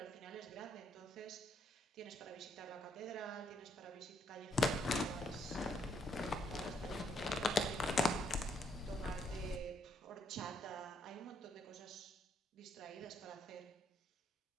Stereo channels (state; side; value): normal; both; correlation 0.72